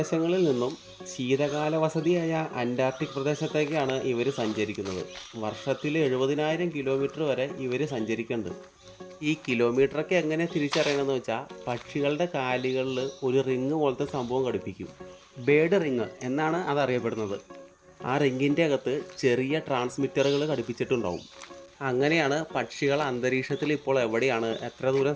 നിന്നും ശീതകാല വസതിയായ അന്റാർട്ടിക് പ്രദേശത്തേക്കാണ് ഇവർ സഞ്ചരിക്കുന്നത്. വർഷത്തിൽ 70,000 കിലോമീറ്റർ വരെ ഇവർ സഞ്ചരിക്കുന്നുണ്ട്. ഈ കിലോമീറ്ററൊക്കെ എങ്ങനെ തിരിച്ചറിയണമെന്ന് വെച്ചാൽ പക്ഷികളുടെ കാലുകളിൽ ഒരു റിങ് പോലത്തെ സംഭവം ഘടിപ്പിക്കും. ബേഡ് റിങ് എന്നാണ് അതറിയപ്പെടുന്നത്. ആ റിങ്ങിൻ്റെ അകത്ത് ചെറിയ ട്രാൻസ്മിറ്ററുകൾ ഘടിപ്പിച്ചിട്ടുണ്ടാവും. അങ്ങനെയാണ് പക്ഷികൾ അന്തരീക്ഷത്തിൽ ഇപ്പോൾ എവിടെയാണ്, എത്ര ദൂരം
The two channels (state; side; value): identical; both; correlation 1.00